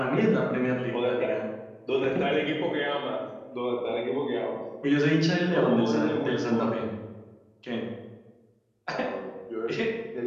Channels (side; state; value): both; identical; correlation 1.00